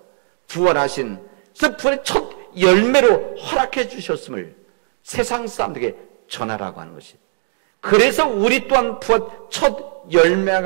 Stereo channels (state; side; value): silent; left; digital silence